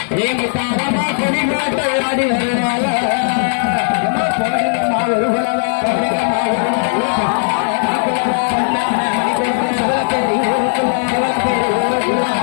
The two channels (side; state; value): right; silent; digital silence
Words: ஏ முத்தாரமா கொடிகாட்ட விராடு வருவாளா போடுங்கம்மா ஒரு குலவா போடுங்கம்மா